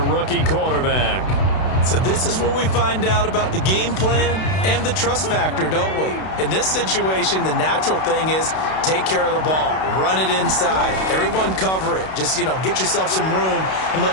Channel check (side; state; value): right; late; 32 ms